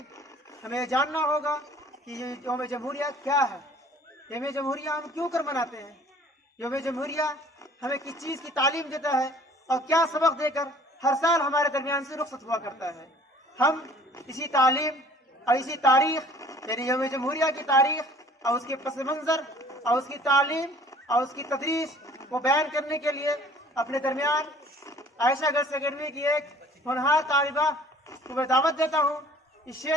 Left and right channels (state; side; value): normal; both; correlation 0.52